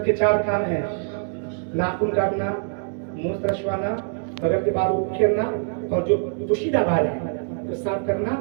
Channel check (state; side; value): silent; left; 56 dB below the other